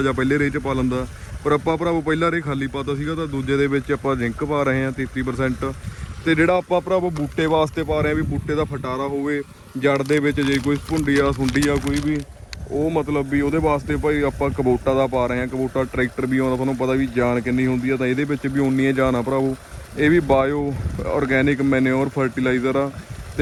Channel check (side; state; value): both; identical; correlation 1.00